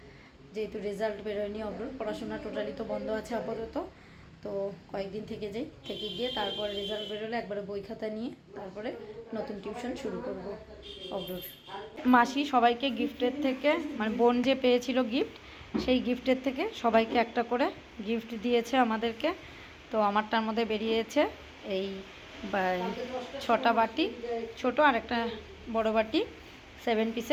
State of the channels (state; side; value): identical; both; correlation 1.00